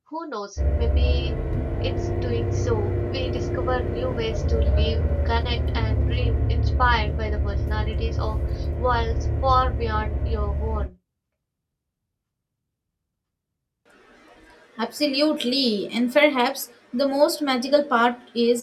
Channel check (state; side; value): identical; both; correlation 1.00